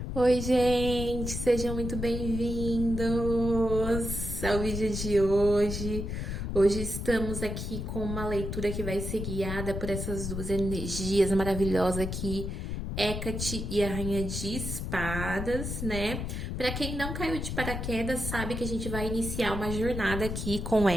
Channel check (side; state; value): left; noise; rumble, 4 dB below the sound